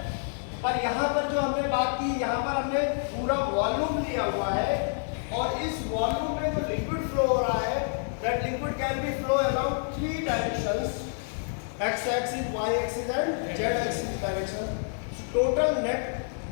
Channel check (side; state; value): right; silent; digital silence